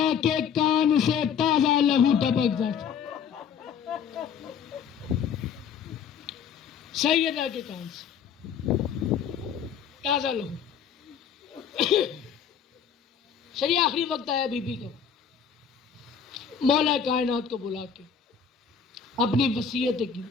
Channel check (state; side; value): quieter; right; 7.4 dB